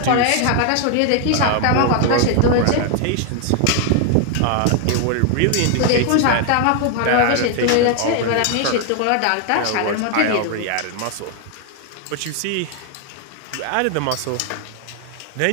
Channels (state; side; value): different; both; correlation 0.00